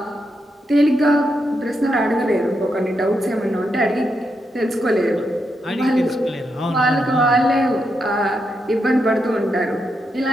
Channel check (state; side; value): normal; both; correlation 0.83